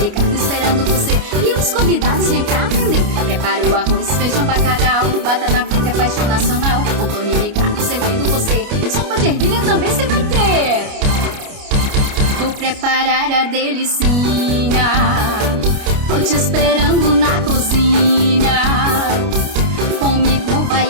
Ricardo esperando você e os convidados vem cá aprender. Prepara o arroz, feijão, bacalhau, batata frita é paixão nacional. Antonia e Ricardo servindo você, sopa de ervilha também você vai ter. Vou preparar a delicinha, tô te esperando na cozinha. Comigo vai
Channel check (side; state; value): left; late; 29 ms